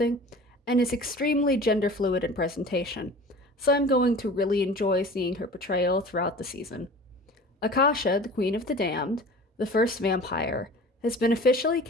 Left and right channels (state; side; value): normal; both; correlation 0.41